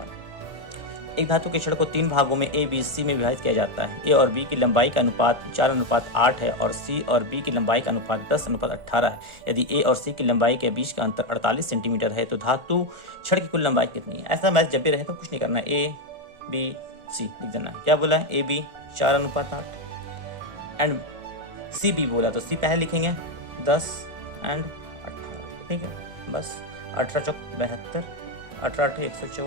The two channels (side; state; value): left; late; 1.4 ms